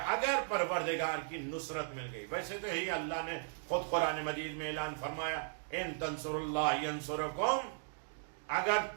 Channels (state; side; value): silent; left; digital silence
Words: اگر پروردگار کی نصرت مل گئی. ویسے تو ہی اللہ نے خود قرآن مجید میں اعلان فرمایا, ان تنصر اللہ ینصرکم, اگر